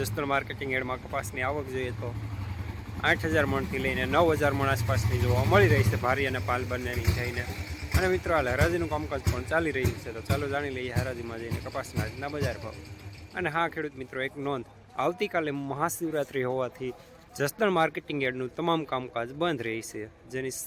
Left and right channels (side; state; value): both; identical; correlation 1.00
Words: માર્કેટિંગ યાર્ડમાં કપાસની આવક જોઈએ તો 8,000 મણથી લઈને 9,000 મણ આસપાસની જોવા મળી રહી છે, ભારી અને પાલ બંનેની થઈને. અને મિત્રો, હાલ હરાજીનું કામકાજ પણ ચાલી રહ્યું છે, તો ચાલો જાણી લઈએ હરાજીમાં જઈને કપાસના આજના બજાર ભાવ. અને હા ખેડૂત મિત્રો, એક નોંધ: આવતીકાલે મહાશિવરાત્રિ હોવાથી જસદણ માર્કેટિંગ યાર્ડનું તમામ કામકાજ બંધ રહી છે, જેની